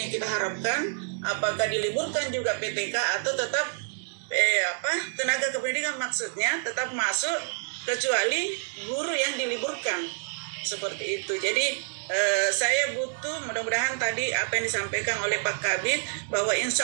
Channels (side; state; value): left; silent; 60 dB below the other